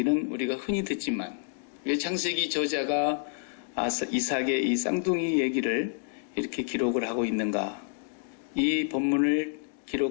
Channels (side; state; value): right; silent; digital silence